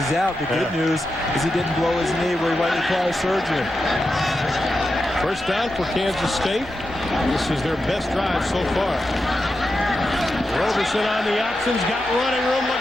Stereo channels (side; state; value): both; normal; correlation 0.89